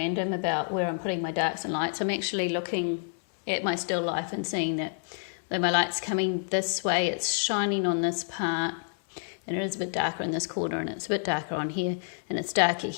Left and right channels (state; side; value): silent; right; 59 dB below the other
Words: about where I'm putting my darks and lights. I'm actually looking at my still life and seeing that my light's coming this way, it's shining on this part, and it is a bit darker in this corner, and it's a bit darker on here, and it's darker